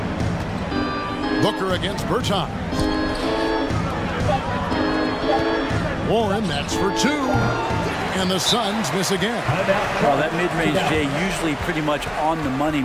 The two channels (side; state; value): both; identical; correlation 1.00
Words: Booker against Bertans. Warren, that's for two. And the Suns miss again. Well, that mid-range, Jay, usually pretty much on the money.